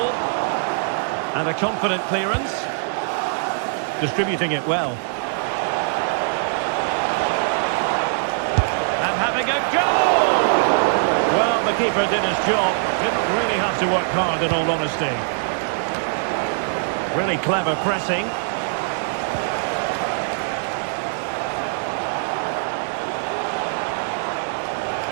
And a confident clearance. Distributing it well. And having a goal! Well, the keeper did his job. Didn't really have to work hard, in all honesty. Really clever pressing.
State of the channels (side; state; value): left; silent; digital silence